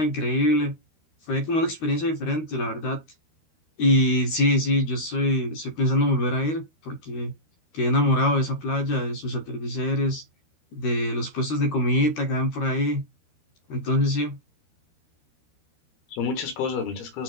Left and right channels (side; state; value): right; late; 13 ms